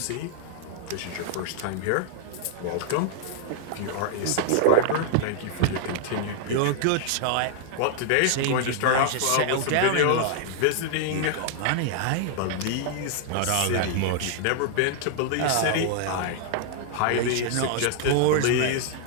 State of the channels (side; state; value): both; different; correlation -0.01